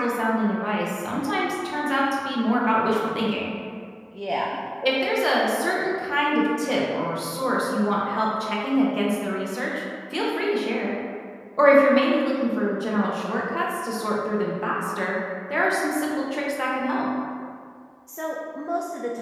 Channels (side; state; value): both; identical; correlation 1.00